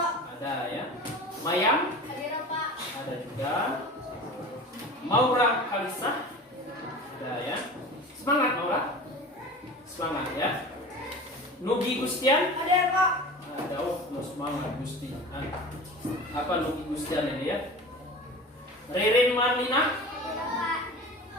Ada ya. Mayang? Hadir, Pak. Ada juga. Maura Kalisah? Ada ya. Semangat Maura. Semangat ya. Nugi Gustian? Hadir, Pak. Ada. Oh, semangat Gusti. Apa Nugi Gustian ini ya? Ririn Marlina? Hadir, Pak.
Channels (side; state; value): both; normal; correlation 0.36